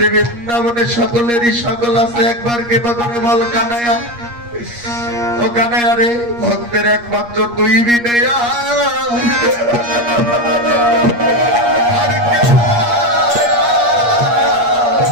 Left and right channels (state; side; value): late; left; 8.5 ms